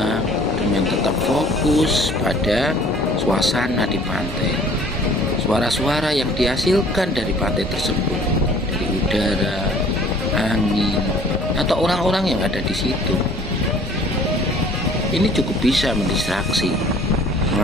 dengan tetap fokus pada suasana di pantai, suara-suara yang dihasilkan dari pantai tersebut, dari udara, angin, atau orang-orang yang ada di situ. Ini cukup bisa mendistraksi,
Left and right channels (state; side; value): normal; both; correlation 0.53